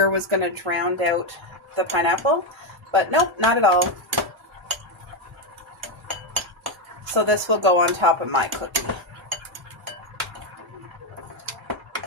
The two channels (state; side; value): normal; both; correlation 0.07